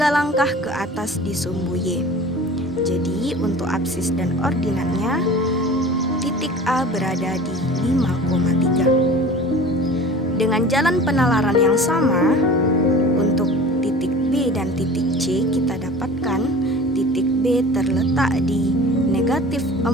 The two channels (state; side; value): normal; both; correlation 0.41